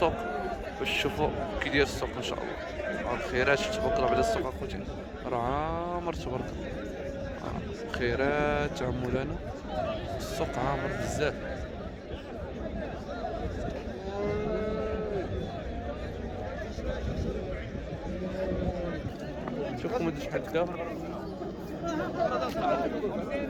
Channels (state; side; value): identical; both; correlation 1.00